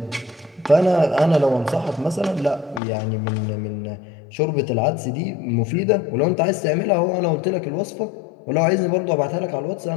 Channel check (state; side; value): drops out; right; at 2.8 s